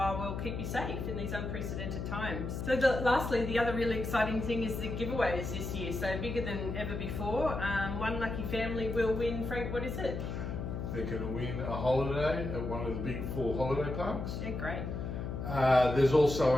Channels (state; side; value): noise; left; hum, 4 dB below the sound